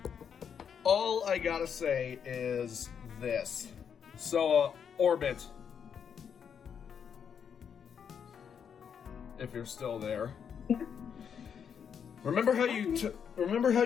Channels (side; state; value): right; quieter; 7.5 dB